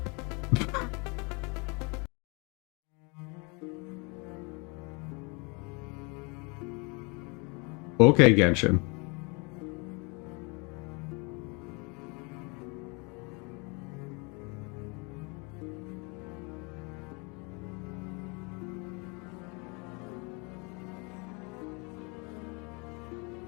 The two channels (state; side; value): quieter; right; 30.8 dB